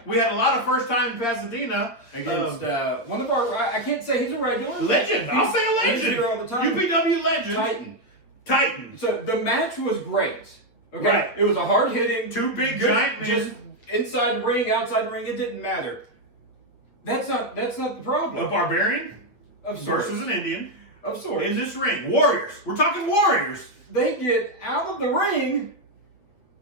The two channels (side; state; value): right; late; 8.4 ms